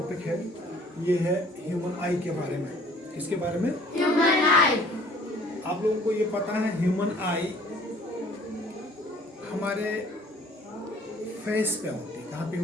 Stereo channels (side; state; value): both; normal; correlation 0.55